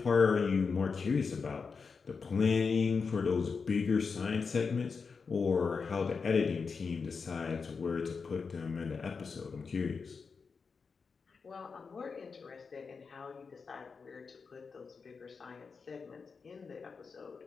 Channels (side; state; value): right; quieter; 5.2 dB